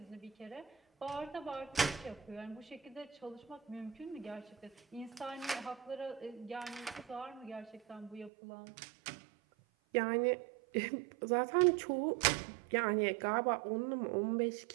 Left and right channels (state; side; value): drops out; left; at 8.3 s